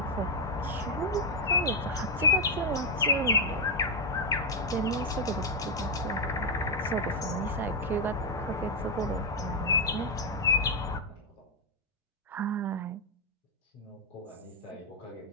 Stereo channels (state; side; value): normal; both; correlation 0.00